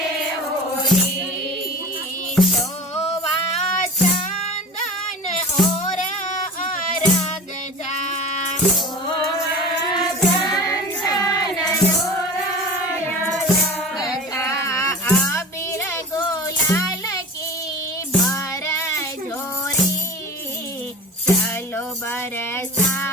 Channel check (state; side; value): normal; both; correlation 0.36